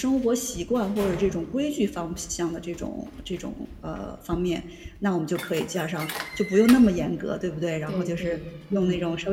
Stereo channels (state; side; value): identical; both; correlation 1.00